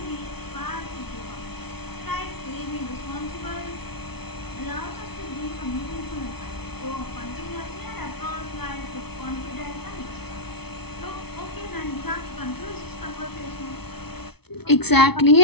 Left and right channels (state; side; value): late; right; 0.97 ms